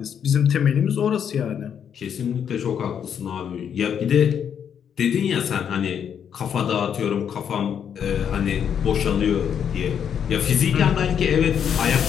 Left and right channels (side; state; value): right; quieter; 8.2 dB